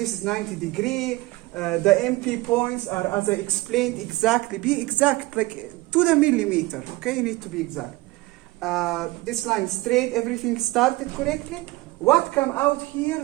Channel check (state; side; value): quieter; left; 20.3 dB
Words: is 90 degree, the MP points are, as I explained, exactly, be exact, like to the millimeter, okay? You need to be exact. This line straight, everything started correctly. What come out here